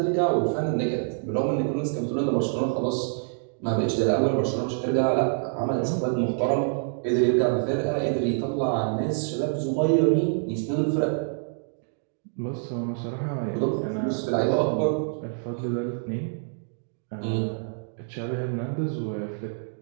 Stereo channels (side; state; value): left; silent; digital silence